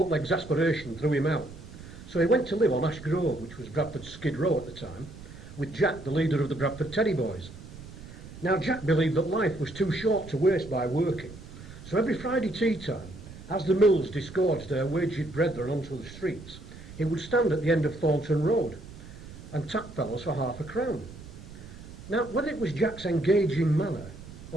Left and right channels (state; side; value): noise; right; rumble, 15 dB below the sound